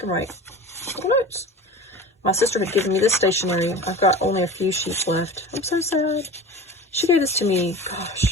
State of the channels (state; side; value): normal; both; correlation 0.35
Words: write. Little notes. My sister had given me this stationery. I've got only a few sheets left. I'm so sad. She gave this to me,